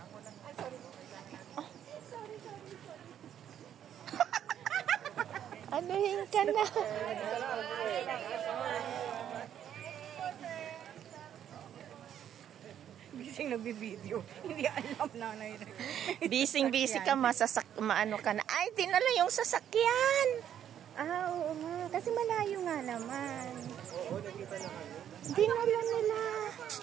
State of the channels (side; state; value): left; quieter; 9.9 dB